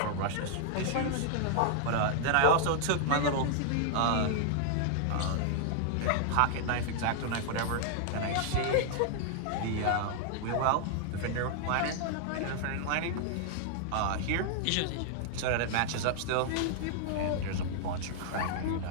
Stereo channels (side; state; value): both; different; correlation -0.01